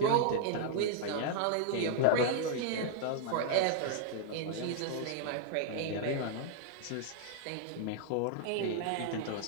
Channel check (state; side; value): different; both; correlation -0.01